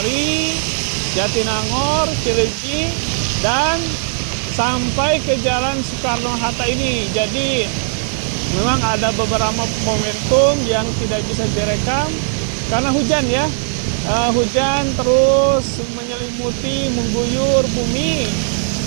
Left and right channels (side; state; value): left; silent; digital silence